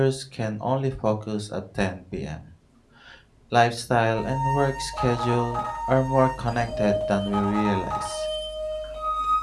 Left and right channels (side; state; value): both; identical; correlation 1.00